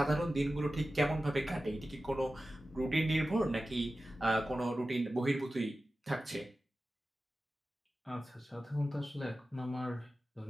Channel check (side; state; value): both; normal; correlation 0.94